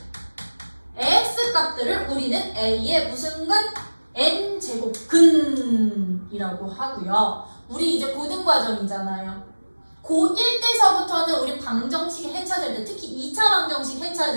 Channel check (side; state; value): both; inverted; correlation -1.00